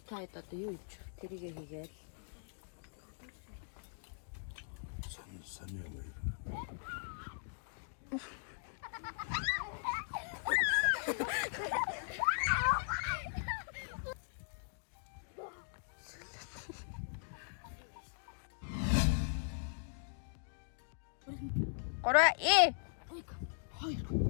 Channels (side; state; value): right; silent; digital silence